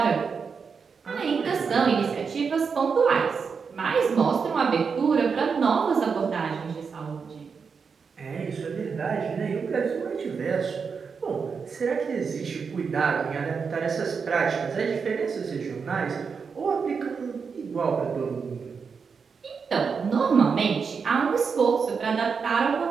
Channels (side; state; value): left; quieter; 5.7 dB